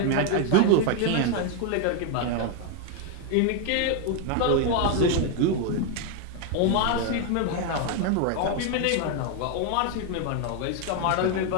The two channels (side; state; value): both; different; correlation 0.01